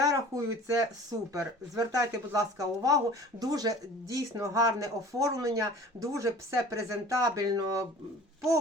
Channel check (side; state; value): both; normal; correlation 0.44